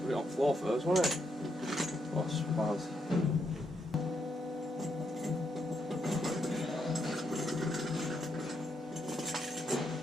it on the floor first, wasn't it? Oh, spaz.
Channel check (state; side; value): normal; both; correlation 0.79